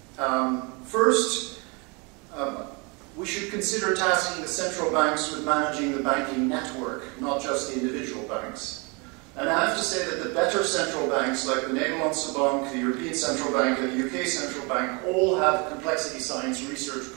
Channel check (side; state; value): left; quieter; 30.4 dB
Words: First, we should consider tasking the central banks with managing the banking network, not just the individual banks. And I have to say that the better central banks, like the Nederlandse Bank, the European Central Bank, and the UK Central Bank, all have complexity science research